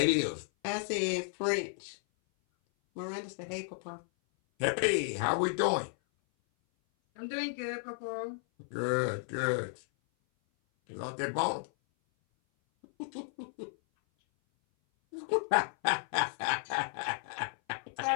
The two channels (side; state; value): right; silent; 55 dB below the other